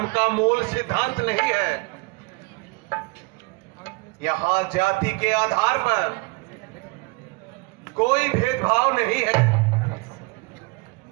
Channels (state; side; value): quieter; left; 27.3 dB